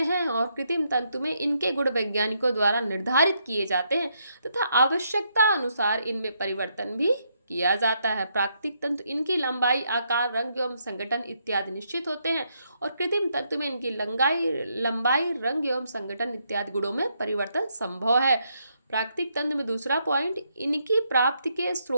और कृत्रिम तंतु में इनके गुण वैज्ञानिकों द्वारा निर्धारित किए जाते हैं तथा आवश्यकता अनुसार इनमें परिवर्तन भी किया जाता है। प्राकृतिक तंतु इनकी लंबाई, आकार, रंग एवं संगठन इत्यादि निश्चित होते हैं और कृत्रिम तंतु में इनकी लंबाई, रंग एवं संगठन इत्यादि गुणों में परिवर्तन संभव है। प्राकृतिक तंत्र में दूसरा पॉइंट, इनकी प्राप्ति के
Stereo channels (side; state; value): both; inverted; correlation -0.76